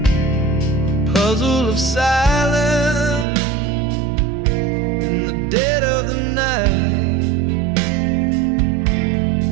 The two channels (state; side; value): drops out; left; at 3.2 s